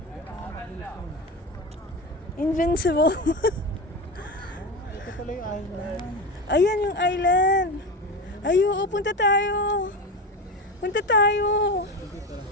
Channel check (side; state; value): both; normal; correlation 0.23